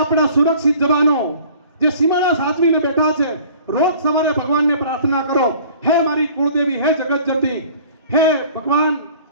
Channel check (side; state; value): both; inverted; correlation -0.49